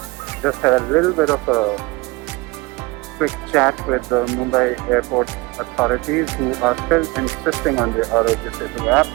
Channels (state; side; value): quieter; left; 23.8 dB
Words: just had a little bit of a quick chat with the Mumbai airport authorities, who are still insisting on the Arogya Setu app.